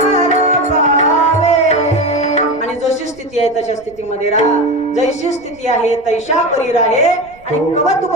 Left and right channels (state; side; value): noise; right; rumble, 26 dB below the sound